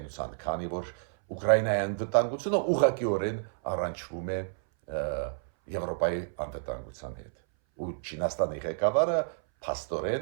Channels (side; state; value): left; silent; 58 dB below the other